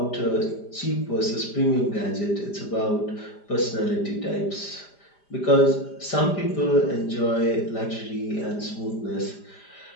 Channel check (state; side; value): late; right; 5.0 ms